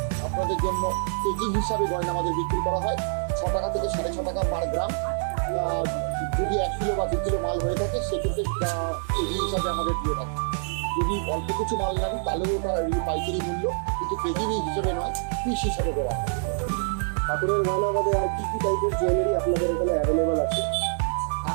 আপনাদের জন্য কেজি হিসাবে গয়না আমাদের বিক্রি করা হয় 6 টাকা থেকে 6.5 টাকা পার গ্রাম। যদি 1 কিলো বা 2 কিলো মাল হয়ে থাকে সেক্ষেত্রে কেজি হিসাবে আমাদের দিয়ে থাকে। যদি অল্প কিছু মাল নেন তাহলেও ওটা পাইকারি মূল্য, কিন্তু কেজি হিসেবে নয়, পিস হিসাবে দেওয়া হয়। ঠাকুরের গয়না বাদে আর কি কি টাইপের জুয়েলারি আপনাদের এখানে অ্যাভেলেবল আছে?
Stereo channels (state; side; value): silent; left; digital silence